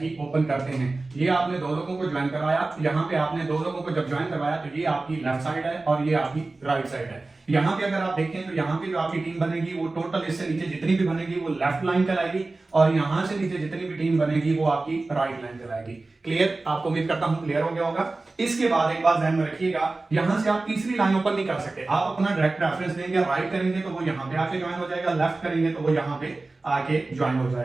ही ओपन करते हैं। ये आपने 2 लोगों को ज्वाइन करवाया, यहाँ पे आपने 2 लोगों को जब ज्वाइन करवाया तो ये आपकी लेफ्ट साइड है और ये आपकी राइट साइड है। यहाँ पे अगर आप देखें तो यहाँ पे जो आपकी टीम बनेगी वो टोटल इससे नीचे जितनी भी बनेगी वो लेफ्ट लाइन कहलाएगी और यहाँ से नीचे जितनी भी टीम बनेगी वो आपकी राइट लाइन कहलाएगी। क्लियर? आपको उम्मीद करता हूँ क्लियर हो गया होगा। इसके बाद एक बात ध्यान में रखिएगा, यहाँ से आप तीसरी लाइन ओपन नहीं कर सकते। आप अपना डायरेक्ट रेफरेंस देंगे, राइट करेंगे तो वो यहाँ पे आके ज्वाइन हो जाएगा, लेफ्ट करेंगे तो वो यहाँ पे आके ज्वाइन हो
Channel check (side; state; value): left; quieter; 3.3 dB